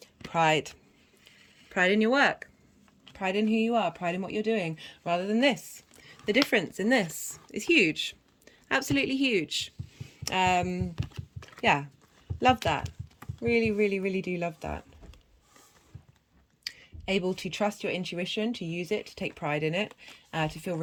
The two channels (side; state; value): both; identical; correlation 1.00